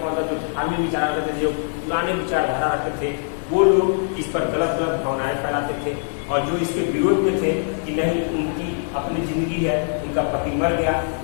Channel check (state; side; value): silent; right; digital silence